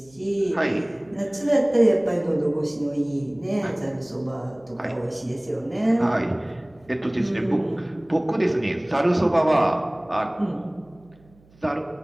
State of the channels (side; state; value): right; noise; hum, 29 dB below the sound